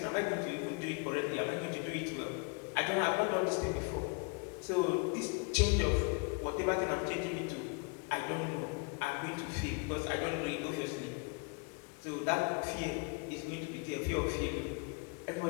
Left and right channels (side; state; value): right; quieter; 33.5 dB